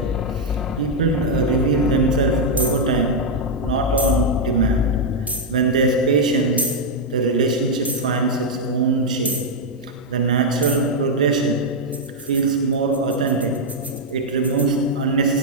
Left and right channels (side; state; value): both; normal; correlation -0.02